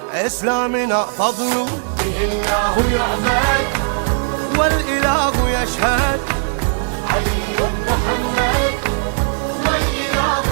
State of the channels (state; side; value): silent; left; 59 dB below the other